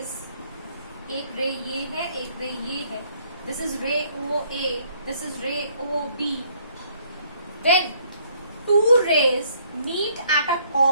एक रे ये है, एक रे ये है, this is ray OA, this is ray OB. When two rays meet at a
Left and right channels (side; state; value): both; inverted; correlation -0.65